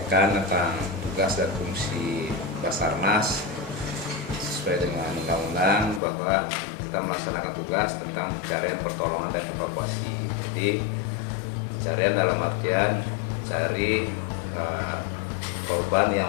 tentang tugas dan fungsi Basarnas sesuai dengan undang-undang bahwa kita melaksanakan tugas tentang pencarian, pertolongan, dan evakuasi. Jadi pencarian dalam artian cari korban yang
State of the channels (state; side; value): drops out; right; at 6.0 s